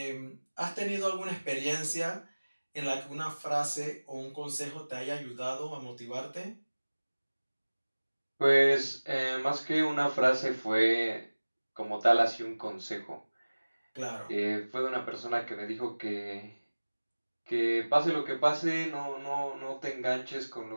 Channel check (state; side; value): inverted; both; correlation -1.00